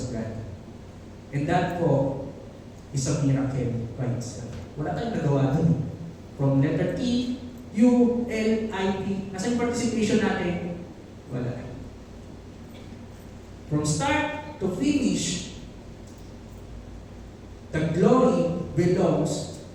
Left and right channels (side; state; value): both; identical; correlation 1.00